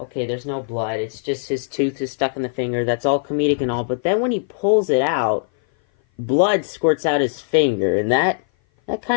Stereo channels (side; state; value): right; silent; 57 dB below the other